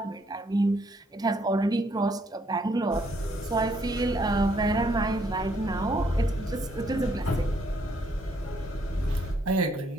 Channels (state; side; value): normal; both; correlation 0.70